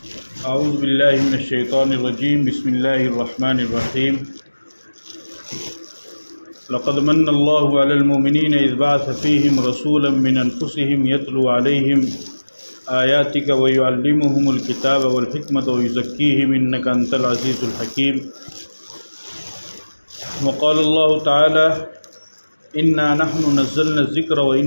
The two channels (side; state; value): both; inverted; correlation -1.00